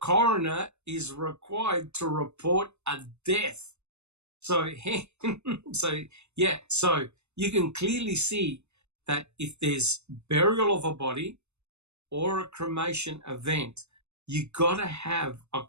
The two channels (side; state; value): left; late; 0.81 ms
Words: is required to report a death. So you can clearly see that if there's burial of a body or a cremation event, you got to have a